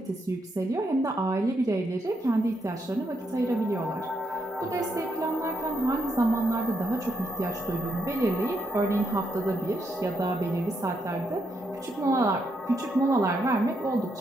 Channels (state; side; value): normal; both; correlation 0.78